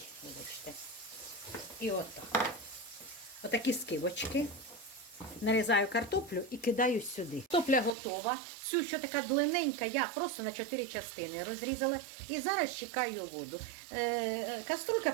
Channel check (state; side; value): drops out; left; at 8.0 s